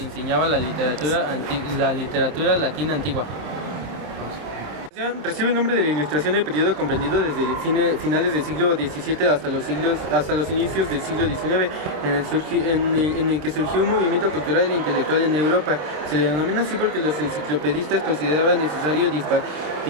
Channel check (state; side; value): late; left; 26 ms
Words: enseñaba la literatura latina antigua. Recibe el nombre de la Ilustración del periodo comprendido desde finales del siglo XVII hasta los inicios del siglo XIX, en el que surgió un movimiento cultural e intelectual en Europa. Se le denomina así porque los enciclopedistas consideraban necesario